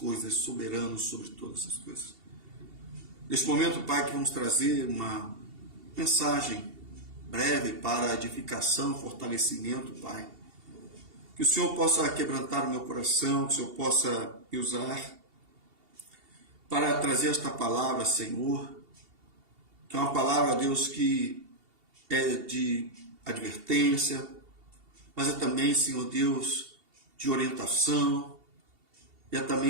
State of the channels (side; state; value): left; late; 2.7 ms